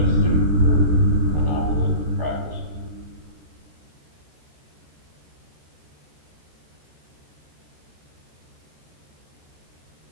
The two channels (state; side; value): late; left; 14 ms